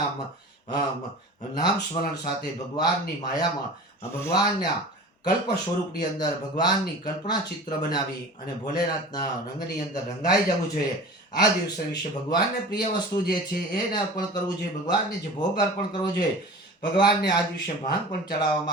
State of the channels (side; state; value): both; normal; correlation 0.38